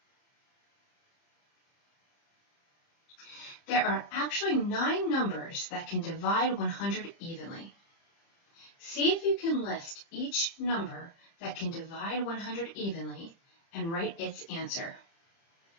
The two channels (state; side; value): late; right; 30 ms